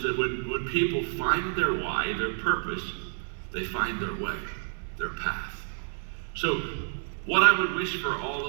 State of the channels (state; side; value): silent; left; 59 dB below the other